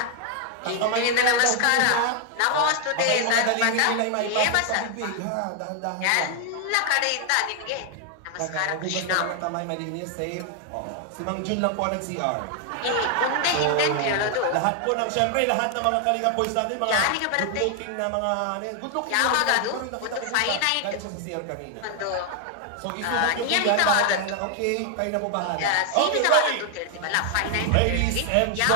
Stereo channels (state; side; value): different; both; correlation 0.00